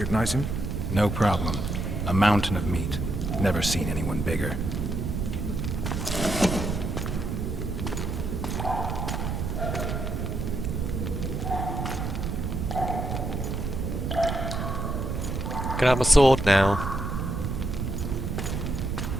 him? No problem. A mountain of meat. Never seen anyone bigger. Can I have my sword now?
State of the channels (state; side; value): noise; right; rumble, 2 dB below the sound